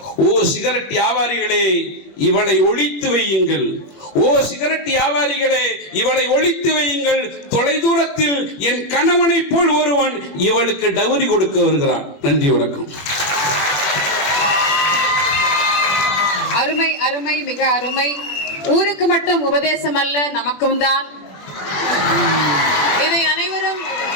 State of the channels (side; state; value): right; late; 21 ms